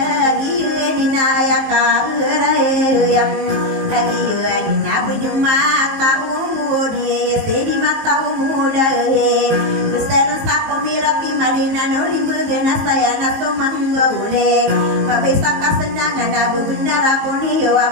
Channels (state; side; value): late; left; 19 ms